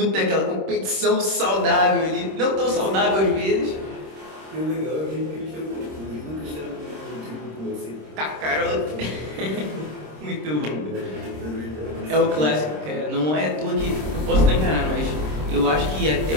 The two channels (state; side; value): late; left; 26 ms